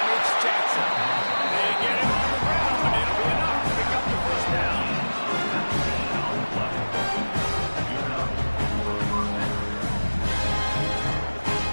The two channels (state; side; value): inverted; both; correlation -1.00